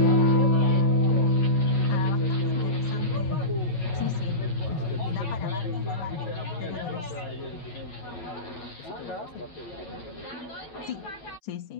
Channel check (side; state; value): right; late; 10 ms